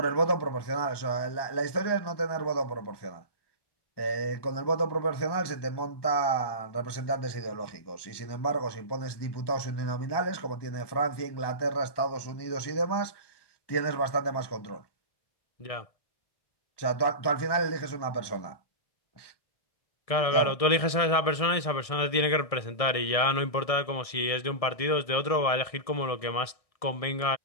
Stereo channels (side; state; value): right; late; 1.6 ms